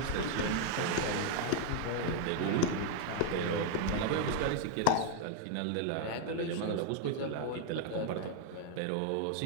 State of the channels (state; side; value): different; both; correlation 0.00